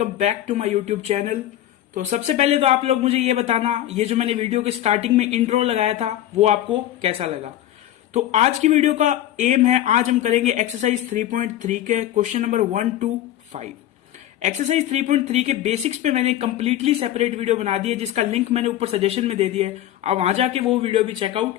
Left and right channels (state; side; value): quieter; right; 12.8 dB